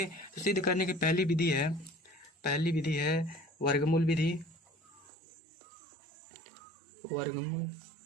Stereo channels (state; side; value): drops out; left; at 5.1 s